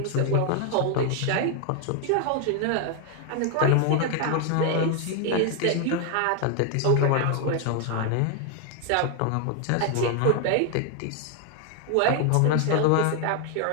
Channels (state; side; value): different; both; correlation 0.01